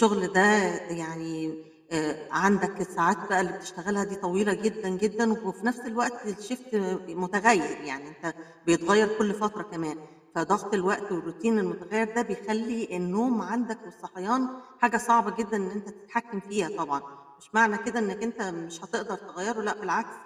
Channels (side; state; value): both; identical; correlation 1.00